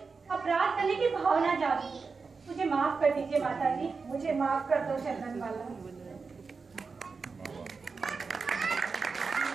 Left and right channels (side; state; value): left; quieter; 4.7 dB